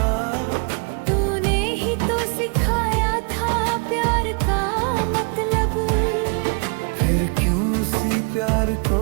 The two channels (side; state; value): left; quieter; 35.4 dB